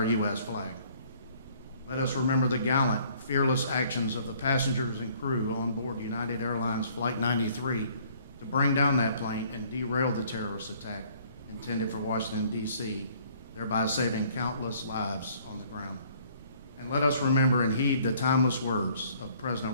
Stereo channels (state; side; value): inverted; both; correlation -0.59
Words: U.S. flag. Let us remember the gallant, fearless actions of the passengers and crew on board United Airlines Flight 93 to bring down that plane and derail the terrorist attack intended for Washington, D.C., thereby saving countless lives on the ground. And let us remember and heed the timeless words of